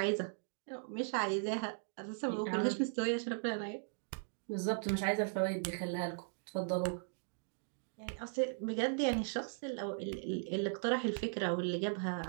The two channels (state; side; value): silent; left; digital silence